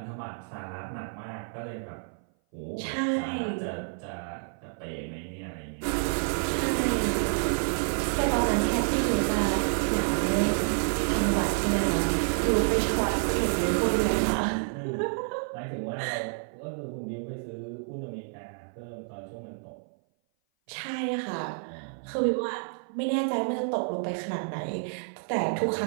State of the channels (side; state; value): left; silent; 57 dB below the other